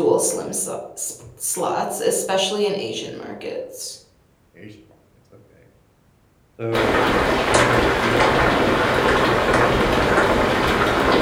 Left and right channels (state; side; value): identical; both; correlation 1.00